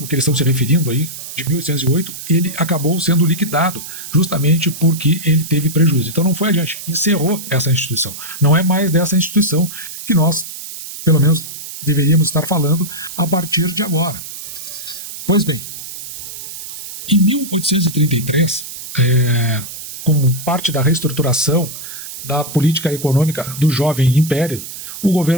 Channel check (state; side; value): noise; right; hiss, 11 dB below the sound